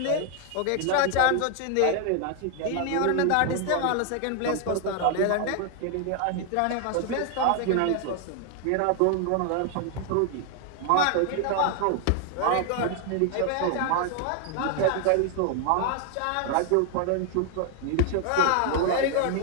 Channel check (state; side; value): different; both; correlation 0.00